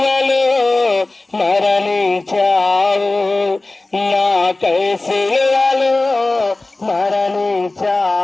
మరణించావు, నాకై సిలువలో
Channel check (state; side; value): quieter; right; 3.0 dB